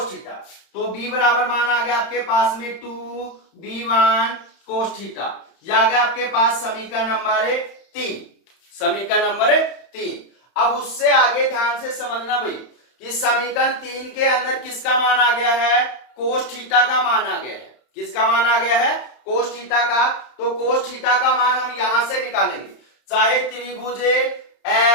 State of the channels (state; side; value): late; right; 31 ms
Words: थीटा। तो B बराबर मान आ गया आपके पास में 2B1 कोस थीटा। यह आ गया आपके पास समीकरण नंबर 3, समीकरण नंबर 3। अब उससे आगे ध्यान से समझना भाई कि समीकरण 3 के अंदर किसका मान आ गया है कोस थीटा का मान आ गया है, किसका मान आ गया है कोस थीटा का। तो कोस थीटा का मान हम यहां से निकालेंगे, चाहे त्रिभुज